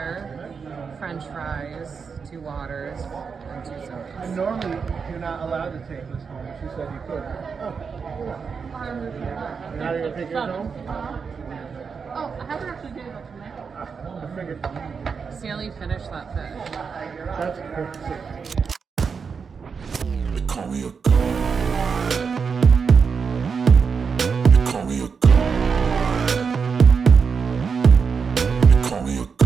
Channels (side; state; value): left; quieter; 5.7 dB